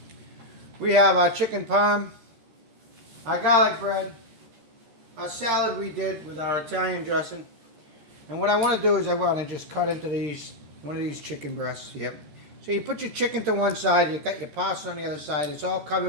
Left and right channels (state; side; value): late; left; 13 ms